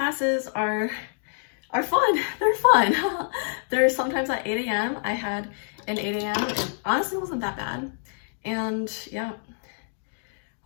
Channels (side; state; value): right; silent; digital silence